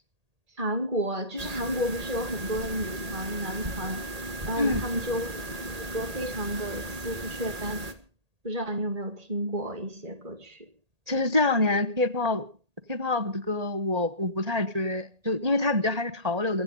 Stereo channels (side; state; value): left; late; 1.8 ms